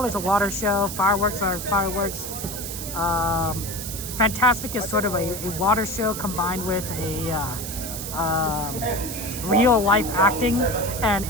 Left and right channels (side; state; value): right; noise; hiss, 7 dB below the sound